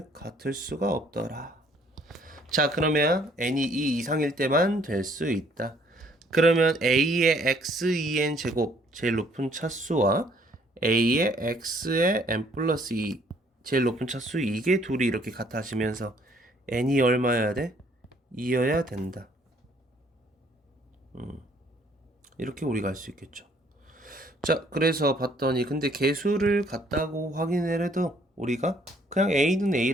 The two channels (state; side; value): normal; both; correlation 0.62